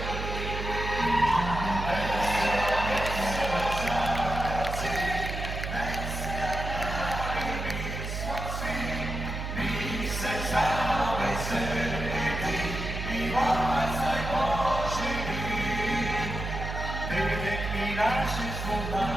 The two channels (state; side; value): noise; right; hum, 5 dB below the sound